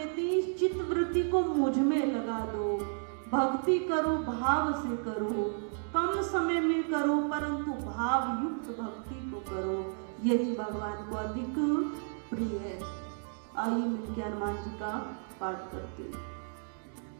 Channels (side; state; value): left; silent; 56 dB below the other